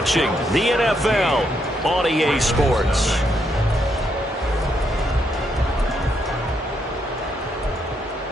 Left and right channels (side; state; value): both; normal; correlation 0.77